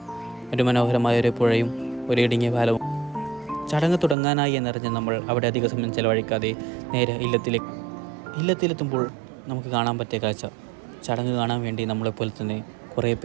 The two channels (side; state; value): left; drops out; at 4.2 s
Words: ഒരു മനോഹരമായ ഒരു പുഴയും ഒരു ഇടുങ്ങിയ പാലവും. ചടങ്ങ് തുടങ്ങാനായി എന്നറിഞ്ഞ് നമ്മൾ അവിടെ അധിക സമയം ചെലവഴിക്കാതെ നേരെ ഇല്ലത്തിലെത്തുമ്പോൾ നമുക്ക് കാണാൻ പറ്റിയ കാഴ്ച, ചടങ്ങ് കാണാൻ വേണ്ടി നമ്മളെപ്പോലെ തന്നെ കുറേ